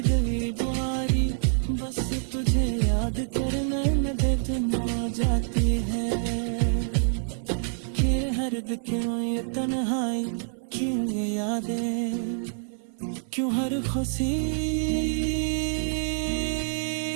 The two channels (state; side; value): silent; left; 60 dB below the other